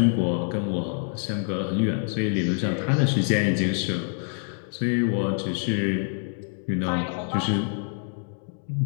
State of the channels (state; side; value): silent; right; 61 dB below the other